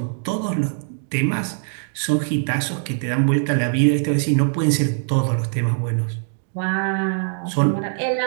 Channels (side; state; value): left; silent; 64 dB below the other